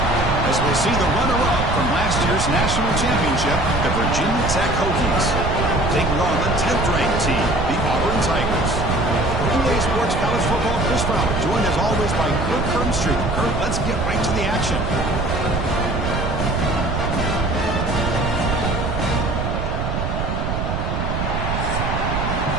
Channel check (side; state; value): right; noise; rumble, 2 dB below the sound